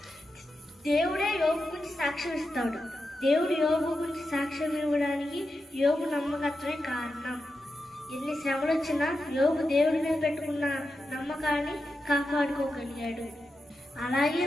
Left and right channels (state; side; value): normal; both; correlation 0.89